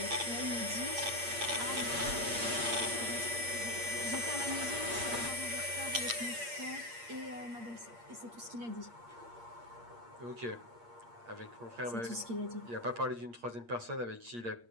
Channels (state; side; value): late; left; 8.5 ms